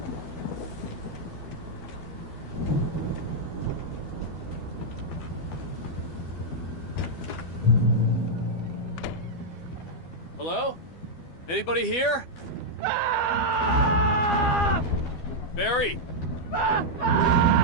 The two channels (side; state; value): right; late; 12 ms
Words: Hello? Anybody here? Barry! No!